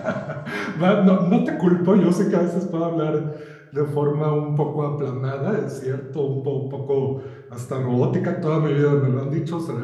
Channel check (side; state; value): both; identical; correlation 1.00